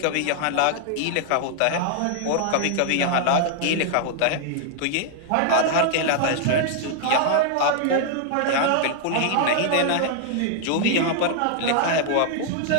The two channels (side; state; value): both; different; correlation -0.01